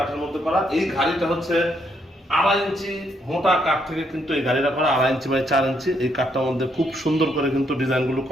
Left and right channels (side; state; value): both; normal; correlation 0.74